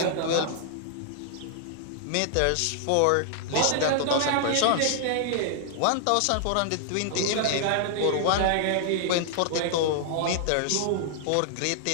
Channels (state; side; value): different; both; correlation -0.01